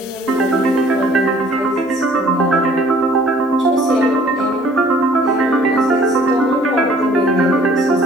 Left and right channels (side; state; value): both; normal; correlation 0.55